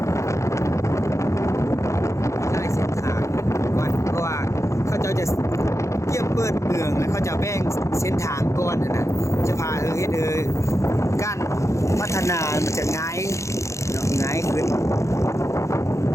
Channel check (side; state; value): right; late; 0.14 ms